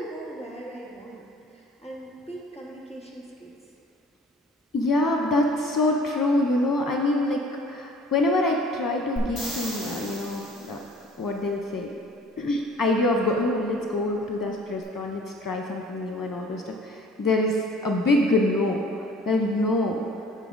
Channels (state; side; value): normal; both; correlation 0.50